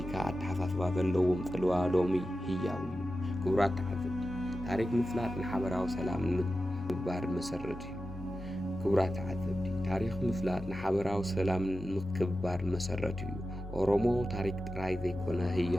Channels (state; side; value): normal; both; correlation 0.92